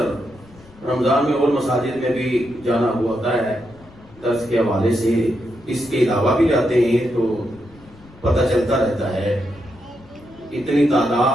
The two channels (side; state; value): left; noise; rumble, 24 dB below the sound